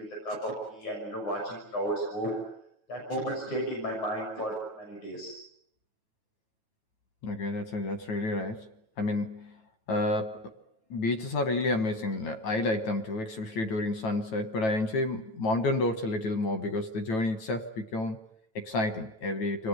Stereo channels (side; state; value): right; late; 9.1 ms